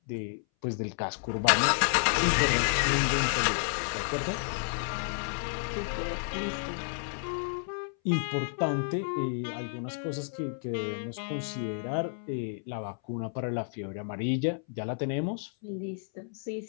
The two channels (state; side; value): silent; right; 57 dB below the other